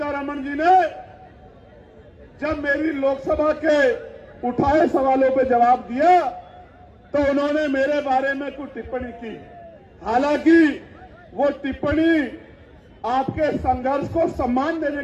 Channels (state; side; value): identical; both; correlation 1.00